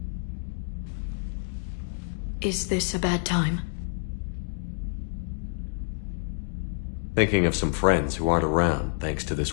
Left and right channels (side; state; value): right; silent; digital silence